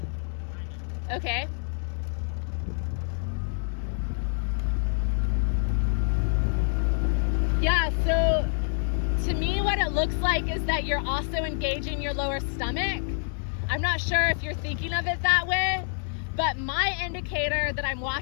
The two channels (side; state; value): right; silent; digital silence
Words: Okay. Yeah, so to me, what it looks like is that you're also engaging your lower stomach. I'm not sure if you're thinking of it that way, but my indicator that I'm